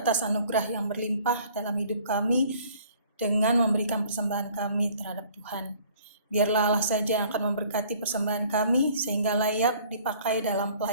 anugerah yang berlimpah dalam hidup kami dengan memberikan persembahan kami terhadap Tuhan. Biarlah Allah saja yang akan memberkati persembahan kami sehingga layak dipakai dalam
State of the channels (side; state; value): both; inverted; correlation -0.55